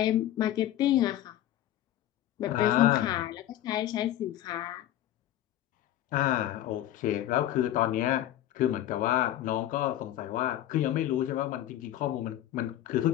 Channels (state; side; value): quieter; right; 13.0 dB